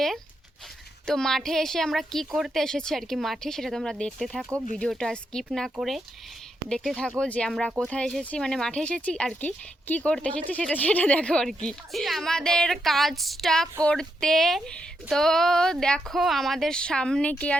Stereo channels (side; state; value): both; normal; correlation 0.82